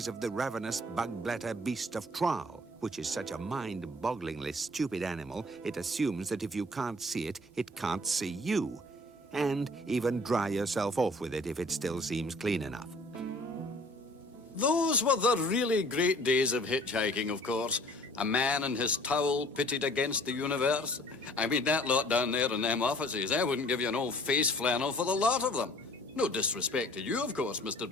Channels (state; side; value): normal; both; correlation 0.52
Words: of the ravenous bug-bladder beast of Traal, which is such a mind-bogglingly stupid animal, it assumes that if you can't see it, it can't see you. And even dry yourself off with it if it still seems clean enough. Those were the really great days of hitchhiking, of course. A man and his towel pitted against the universe. I mean, that lot down there in them offices, I wouldn't give you an old face flannel for the lot of them. No disrespect to you, of course, Mr.